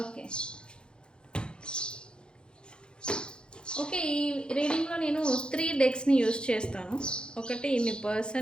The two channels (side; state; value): right; late; 0.049 ms